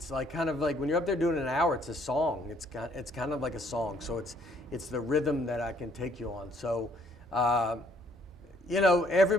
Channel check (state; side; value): normal; both; correlation 0.64